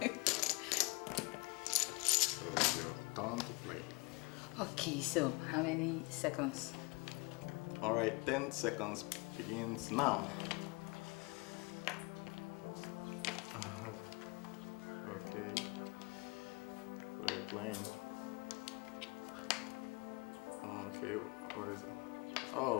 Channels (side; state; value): right; quieter; 27.8 dB